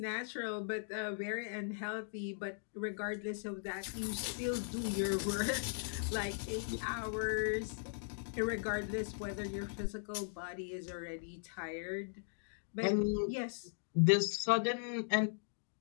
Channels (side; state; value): right; silent; digital silence